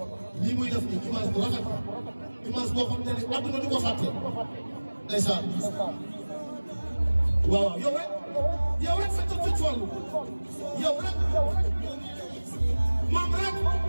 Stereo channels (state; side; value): inverted; both; correlation -1.00